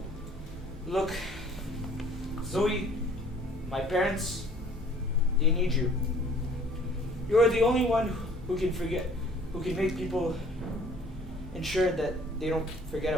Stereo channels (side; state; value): both; normal; correlation 0.55